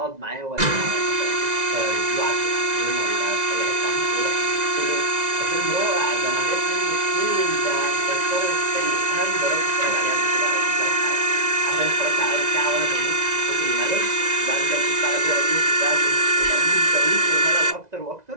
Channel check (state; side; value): late; left; 2.0 ms